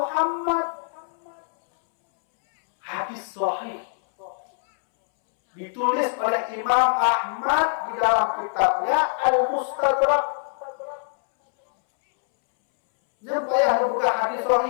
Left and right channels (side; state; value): right; silent; 63 dB below the other